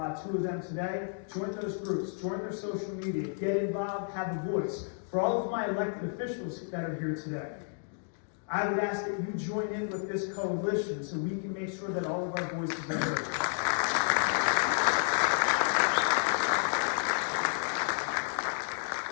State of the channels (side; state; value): right; silent; digital silence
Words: two of them today. Join those groups, join their social media, get involved, have a voice. For all of my elected officials that are here today, I would ask that you join in with this coalition so we can make sure that all of our voices are heard.